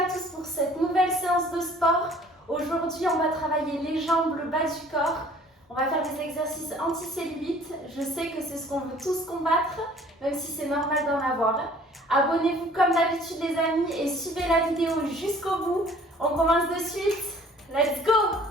à tous pour cette nouvelle séance de sport. Aujourd'hui, on va travailler les jambes, le bas du corps. On va faire des exercices anti-cellulite. Je sais que c'est ce qu'on veut tous combattre, même si c'est normal d'en avoir. Abonnez-vous comme d'habitude les amis et suivez la vidéo jusqu'au bout. On commence de suite. Let's go!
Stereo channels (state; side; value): normal; both; correlation 0.53